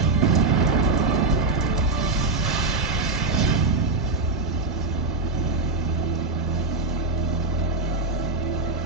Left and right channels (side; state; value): left; quieter; 3.5 dB